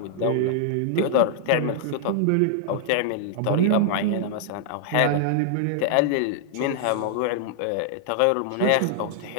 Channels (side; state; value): both; different; correlation -0.01